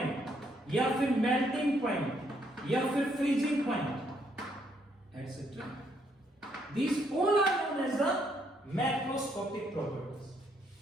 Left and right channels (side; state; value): both; normal; correlation 0.72